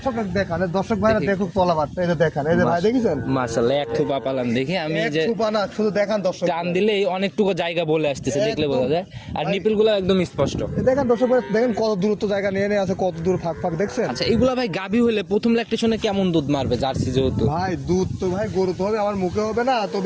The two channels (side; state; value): both; identical; correlation 1.00